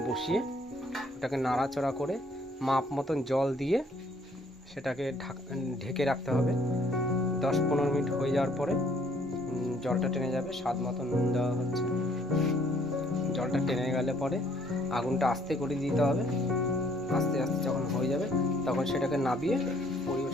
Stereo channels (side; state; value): both; normal; correlation 0.63